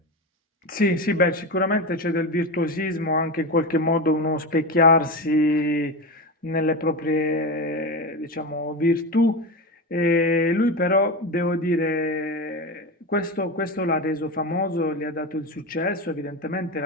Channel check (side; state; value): both; normal; correlation 0.20